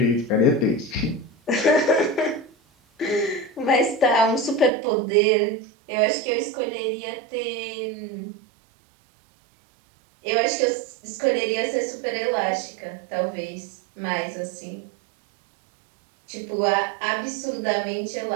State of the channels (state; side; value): drops out; left; at 4.7 s